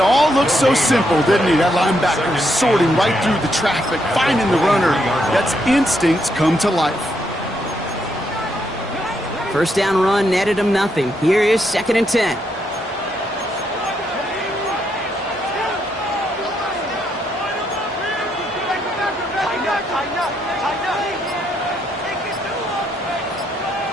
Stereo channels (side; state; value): both; normal; correlation 0.77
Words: all look so simple, didn't he? That linebacker sorting right through the traffic, finding the runner. That's instincts come to life. First down run netted him nothing. Here is second and 10.